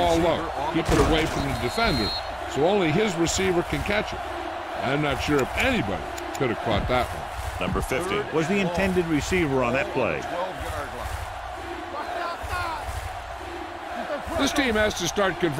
low, keep it away from the defender, so only his receiver can catch it. I'm not sure if anybody could have caught that one. Number 50 was the intended receiver on that play. This team has to start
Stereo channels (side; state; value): both; identical; correlation 1.00